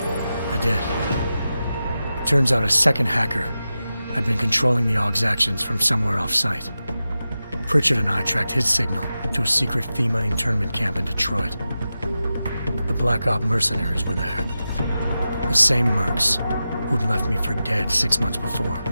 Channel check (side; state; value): both; inverted; correlation -0.92